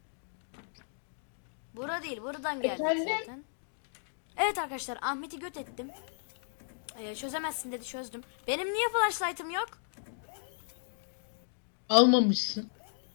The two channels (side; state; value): right; silent; digital silence